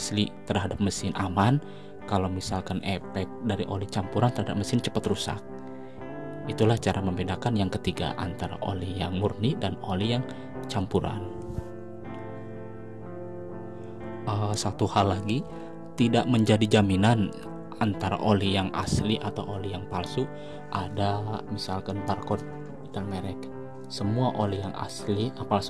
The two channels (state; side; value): identical; both; correlation 1.00